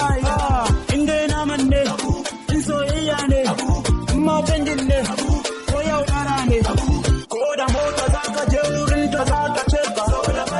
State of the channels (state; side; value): identical; both; correlation 1.00